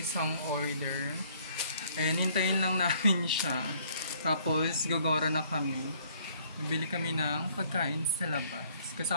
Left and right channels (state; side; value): inverted; both; correlation -0.62